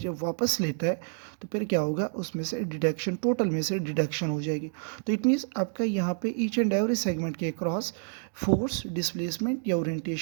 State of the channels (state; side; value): silent; left; 58 dB below the other